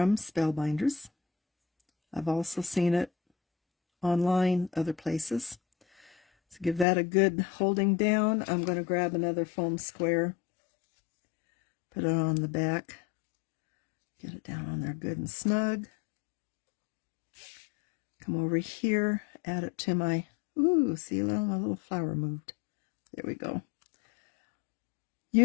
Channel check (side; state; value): right; drops out; at 6.9 s